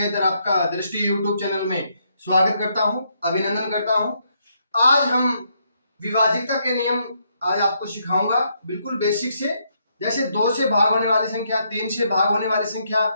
आपका दृष्टि यूट्यूब चैनल में स्वागत करता हूं, अभिनंदन करता हूं। आज हम विभाज्यता के नियम आज आपको सिखाऊंगा, बिल्कुल बेसिक से। जैसे 2 से भाग होने वाली संख्या, 3 से भाग होने वाली संख्या,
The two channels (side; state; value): both; inverted; correlation -0.75